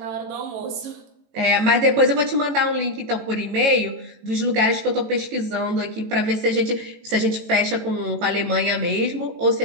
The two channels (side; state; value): left; late; 18 ms